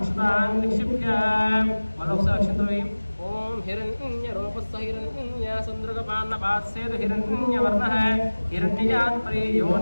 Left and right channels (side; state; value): both; inverted; correlation -1.00